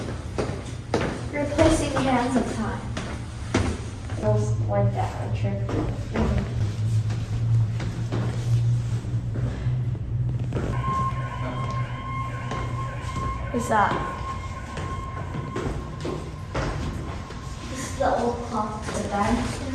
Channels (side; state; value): both; identical; correlation 1.00